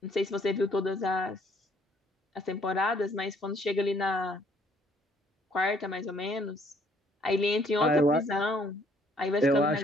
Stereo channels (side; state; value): both; normal; correlation 0.64